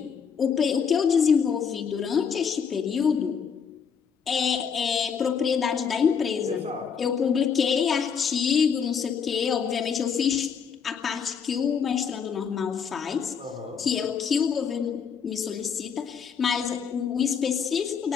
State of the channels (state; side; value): quieter; right; 6.7 dB